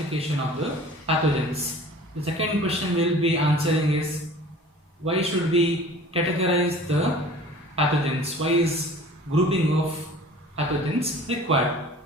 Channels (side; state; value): both; normal; correlation 0.45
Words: of the pathogens. The second question we will be answering is why should we categorize the pathogens? Why is grouping of pathogens required?